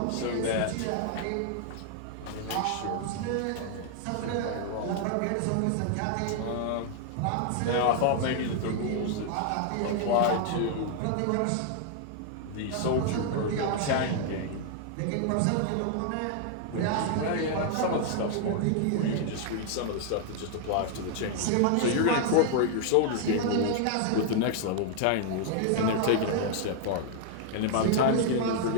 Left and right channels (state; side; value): different; both; correlation 0.00